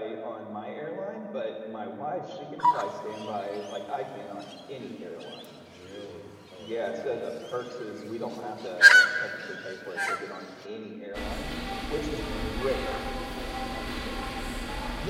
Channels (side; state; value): both; identical; correlation 1.00